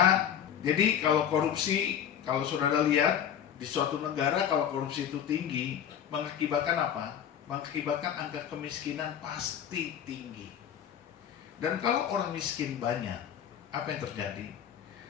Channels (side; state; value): right; quieter; 9.3 dB